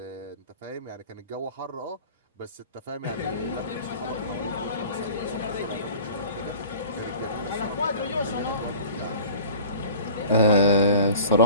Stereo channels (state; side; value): inverted; both; correlation -0.44